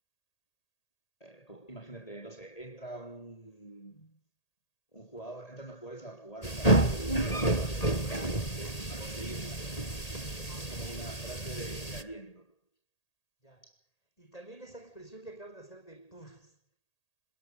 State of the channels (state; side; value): late; right; 1.8 ms